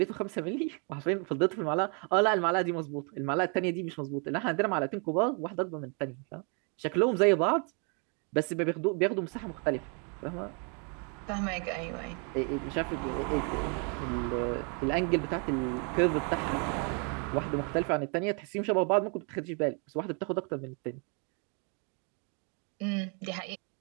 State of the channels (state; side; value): quieter; left; 37.2 dB